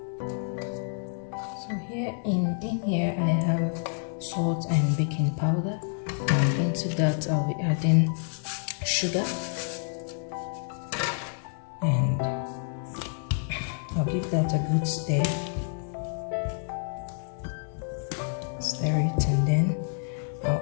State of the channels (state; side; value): silent; right; 59 dB below the other